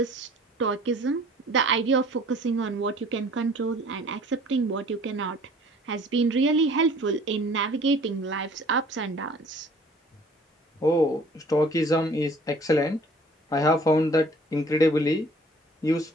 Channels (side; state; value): both; normal; correlation 0.52